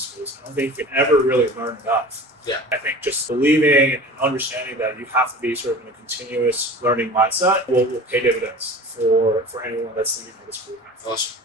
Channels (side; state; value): both; normal; correlation 0.39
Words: I don't think you can ever really learn enough. Yeah. I think just believing and understanding that you have to be sort of in a continuous learning mindset will pay dividends for anyone that's thinking of this program. Awesome.